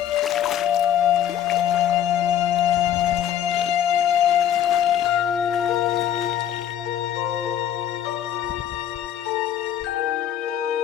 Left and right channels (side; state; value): right; quieter; 10.5 dB